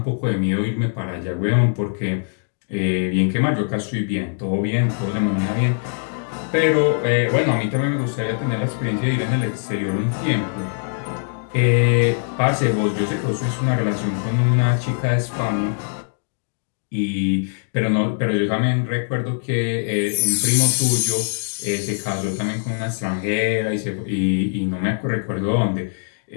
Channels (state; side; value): silent; right; digital silence